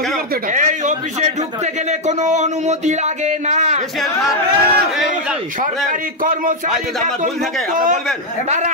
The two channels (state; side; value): normal; both; correlation 0.00